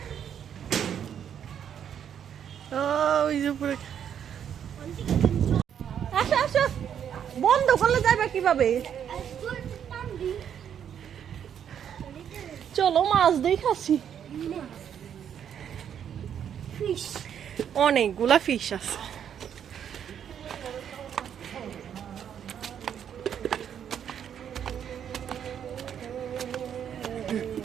আসো আসো, বন্ধ করলে যাবে কিভাবে? চলো মাছ দেখাচ্ছি, অনেকগুলা ফিশ আছে।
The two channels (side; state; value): left; quieter; 8.8 dB